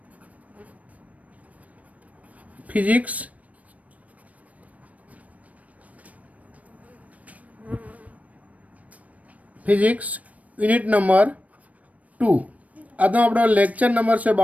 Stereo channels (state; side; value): late; left; 0.069 ms